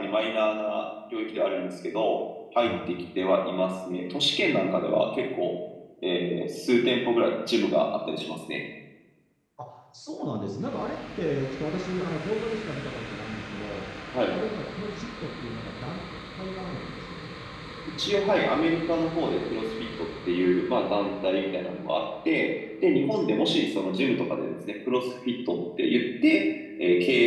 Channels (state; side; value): identical; both; correlation 1.00